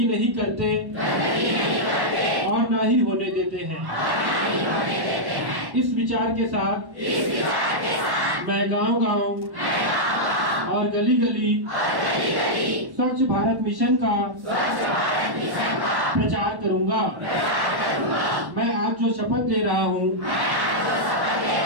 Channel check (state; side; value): late; left; 1.1 ms